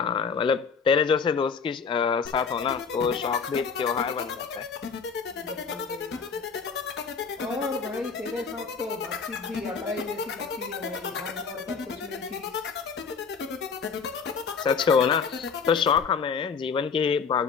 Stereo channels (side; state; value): right; quieter; 5.7 dB